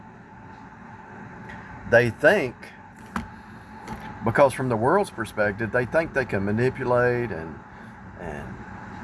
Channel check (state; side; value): identical; both; correlation 1.00